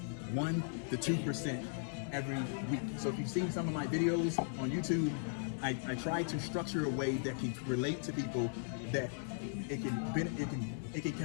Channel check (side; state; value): right; silent; 53 dB below the other